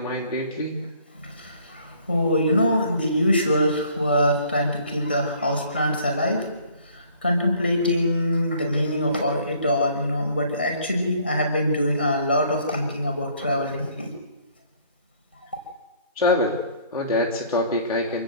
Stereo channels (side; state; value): both; inverted; correlation -0.58